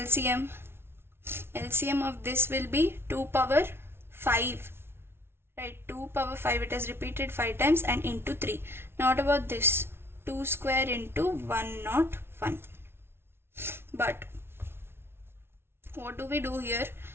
LCM of this will be 2 power 5, right? 2 power 5, it has repeated 5 times, and into 3. Now what about this? 2 square into 101. But what do we do here?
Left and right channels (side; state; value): left; late; 0.12 ms